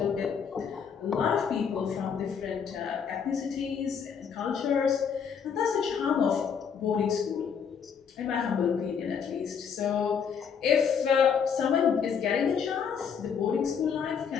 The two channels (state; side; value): quieter; right; 6.9 dB